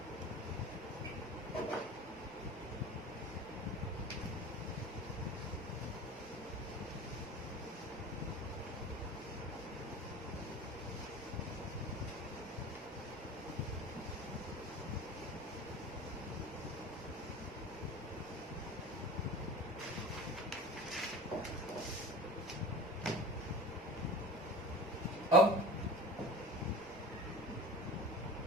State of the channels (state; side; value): normal; both; correlation 0.35